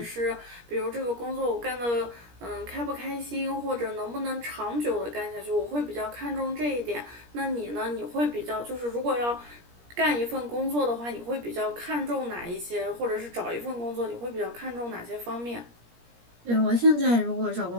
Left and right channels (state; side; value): late; left; 17 ms